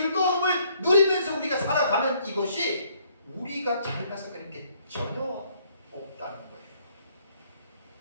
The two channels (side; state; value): both; inverted; correlation -0.66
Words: 누리면서 우리가 살아가는 이것이 우리가 잘나서 그런 게 전혀 없다는 거예요.